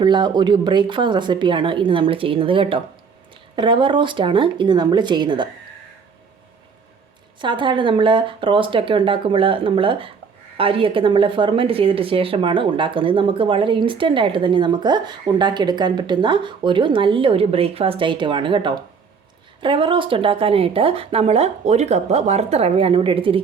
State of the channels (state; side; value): quieter; left; 5.8 dB